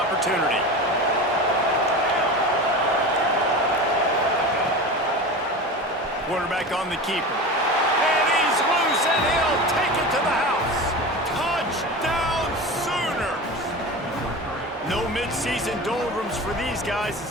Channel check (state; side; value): normal; both; correlation 0.30